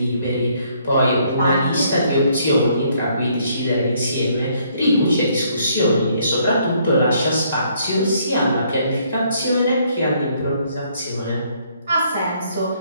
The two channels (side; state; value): both; inverted; correlation -0.67